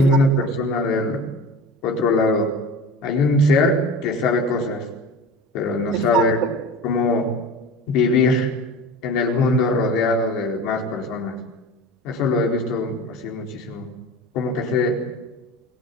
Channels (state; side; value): normal; both; correlation 0.35